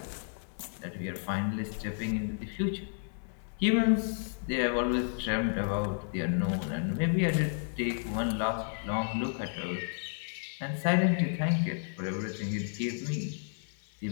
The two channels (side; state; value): right; silent; 56 dB below the other